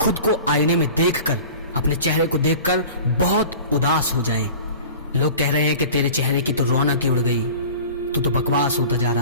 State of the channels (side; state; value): both; inverted; correlation -0.40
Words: खुद को आईने में देखकर, अपने चेहरे को देखकर बहुत उदास हो जाएं, लोग कह रहे हैं कि तेरे चेहरे की तो रौनक ही उड़ गई, तू तो बकवास होता जा